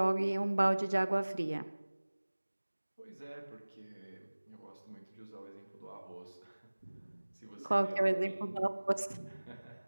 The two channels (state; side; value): inverted; both; correlation -1.00